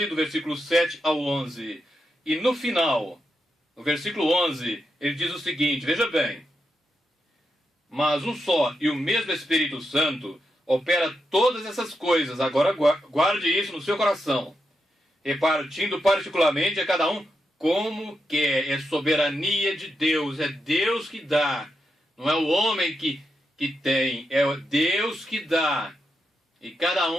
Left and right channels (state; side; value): normal; both; correlation 0.85